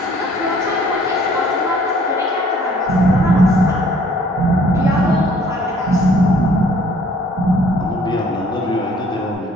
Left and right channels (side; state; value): both; normal; correlation 0.57